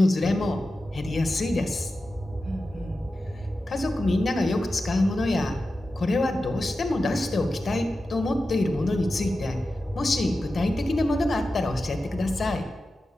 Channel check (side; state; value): both; normal; correlation 0.92